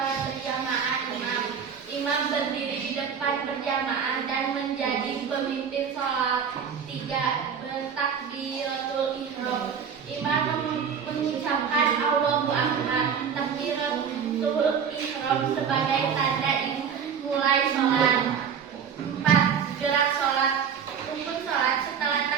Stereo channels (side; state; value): left; quieter; 7.2 dB